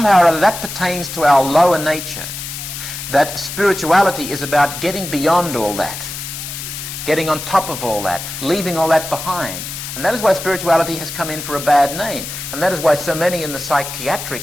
or other that pertains to our lower nature, that spirituality is about getting beyond all that, getting on top of all that, leaving all that behind. And that is why spirituality has come in for a bad name. And that is why so many in the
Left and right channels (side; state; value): left; noise; hiss, 8 dB below the sound